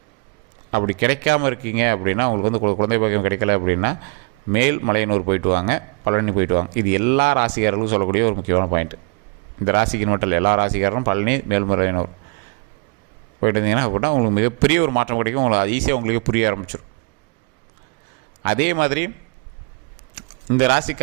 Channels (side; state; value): left; quieter; 32.0 dB